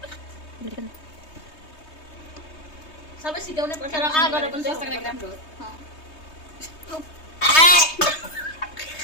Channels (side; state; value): right; late; 3.2 ms